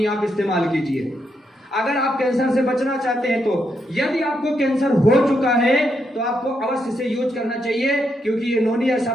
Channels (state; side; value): normal; both; correlation 0.80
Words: आप इस्तेमाल कीजिए। अगर आप कैंसर से बचना चाहते हैं तो, यदि आपको कैंसर हो चुका है तो आपको अवश्य इसे यूज करना चाहिए, क्योंकि ये नोनी ऐसा